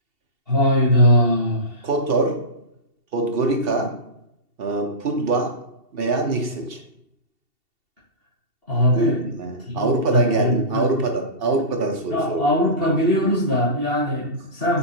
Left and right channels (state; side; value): late; left; 2.7 ms